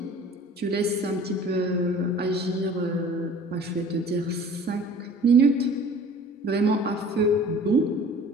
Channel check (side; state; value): both; normal; correlation 0.46